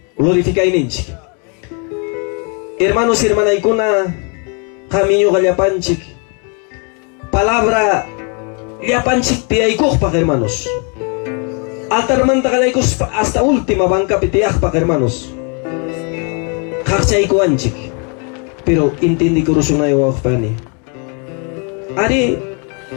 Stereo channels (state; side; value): quieter; right; 36.6 dB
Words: glorifikainchik. Hermanos y hermanaykuna, camino gallapanchik, palabra llapanchik tiaykukpak, hermanos. Altarmanta galaykos hasta última banca pitiakpak, hermanos. Kakchaykuanchik, pero intindi kurusunayo wakpani. Ari,